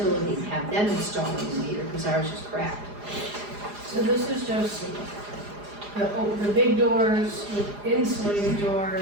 and have them install a new meter, because ours is cracked. So this is just the big doors, the insulated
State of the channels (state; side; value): late; left; 4.9 ms